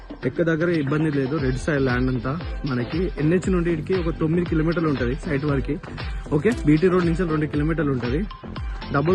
ఎక్క దగ్గర ఇబ్బంది లేదు. రెడ్ సైడ్ ల్యాండ్ అంతా మనకి ఎన్హెచ్ నుండి ఇడికి ఒక 9 కిలోమీటర్లు ఉంటుంది సైట్ వరకు. ఓకే బీటీ రోడ్ నుంచి 2 కిలోమీటర్లు ఉంటుంది.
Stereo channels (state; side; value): identical; both; correlation 1.00